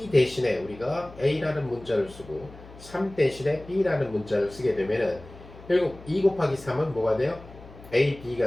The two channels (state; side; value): noise; left; hum, 19 dB below the sound